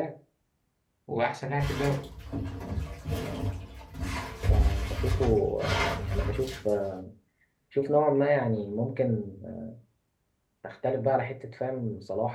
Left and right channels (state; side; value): identical; both; correlation 1.00